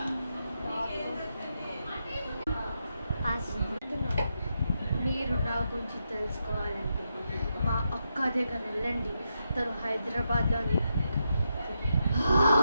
మీరు నా గురించి తెలుసుకోవాలంటే మా అక్క దగ్గర వెళ్ళండి. తను హైదరాబాద్లోని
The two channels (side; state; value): both; inverted; correlation -0.84